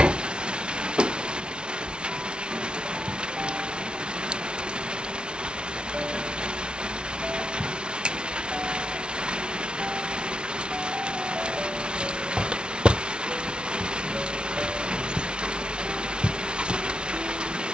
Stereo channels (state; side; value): late; left; 0.056 ms